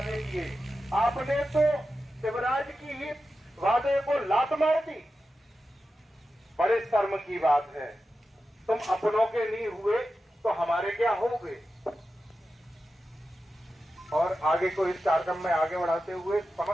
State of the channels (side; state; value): both; normal; correlation 0.91